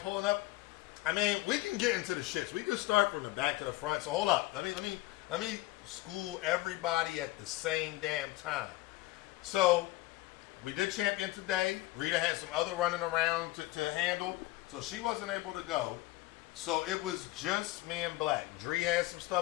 up. I mean, we can get into the shits. We just start from the back to the front. So hold up. Let me school everybody at the same damn time. So we did Champion today. Rita had some other running around to handle, so she wasn't able to go. So it was just me and Black. Dree had some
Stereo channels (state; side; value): quieter; right; 18.8 dB